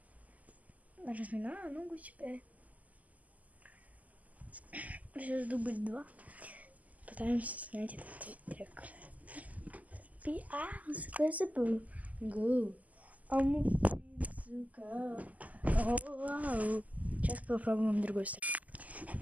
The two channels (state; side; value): late; left; 0.077 ms